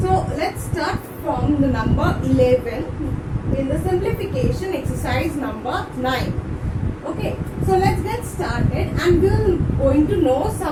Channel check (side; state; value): both; identical; correlation 1.00